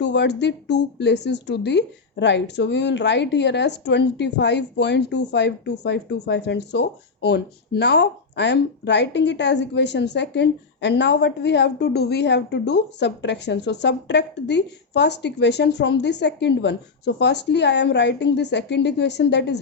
the two places to the right. So we will write here as 25.252525 and so on. Now I am writing it as equation second, and now what we have to do, we have to do subtraction. So subtract the first equation from the second one. So firstly I am writing the second equation, that is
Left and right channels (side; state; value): right; quieter; 4.6 dB